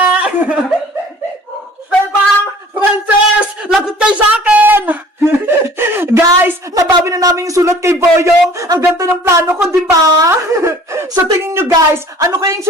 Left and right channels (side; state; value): both; normal; correlation 0.50